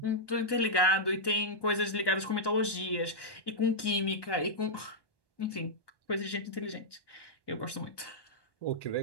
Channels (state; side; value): late; right; 1.1 ms